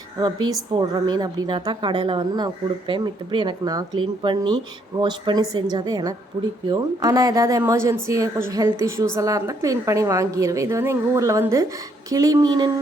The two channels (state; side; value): normal; both; correlation 0.70